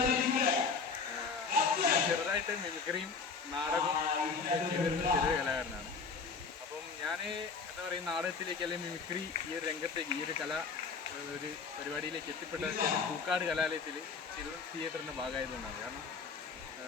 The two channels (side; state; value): right; quieter; 5.1 dB